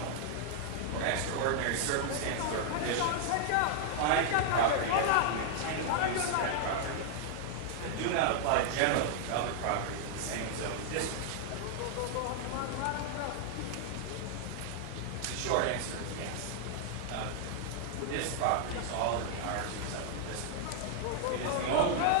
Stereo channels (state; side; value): different; both; correlation -0.01